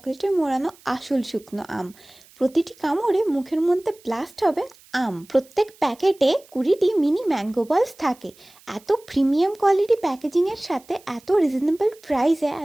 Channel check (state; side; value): noise; right; hiss, 27 dB below the sound